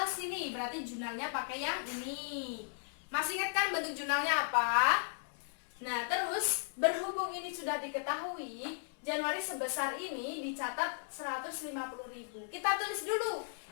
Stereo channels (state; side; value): silent; right; digital silence